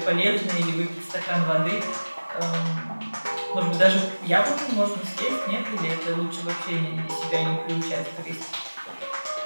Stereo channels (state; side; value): inverted; both; correlation -1.00